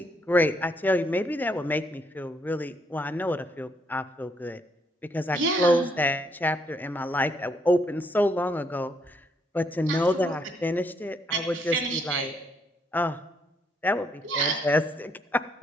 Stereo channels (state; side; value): normal; both; correlation 0.72